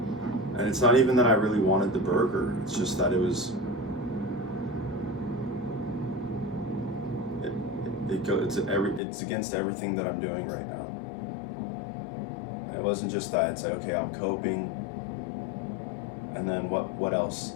And it's not even that I really wanted the burger. It's just that it it's against everything that I'm doing right now. And it wasn't just that. It's like, okay, I'm coping, and then what else?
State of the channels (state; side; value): drops out; right; at 9.0 s